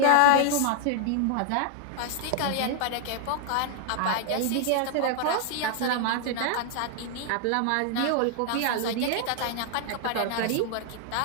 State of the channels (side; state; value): both; different; correlation 0.00